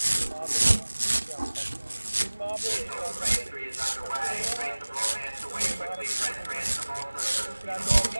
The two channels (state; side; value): inverted; both; correlation -1.00